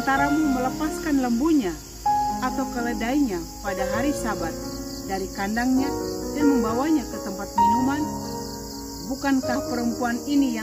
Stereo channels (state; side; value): identical; both; correlation 1.00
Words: melepaskan lembunya atau keledainya pada hari Sabat dari kandangnya dan membawanya ke tempat minuman? Bukankah perempuan ini